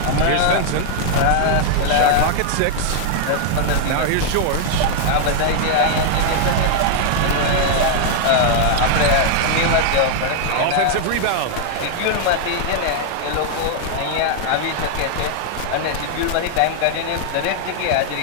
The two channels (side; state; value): both; different; correlation 0.00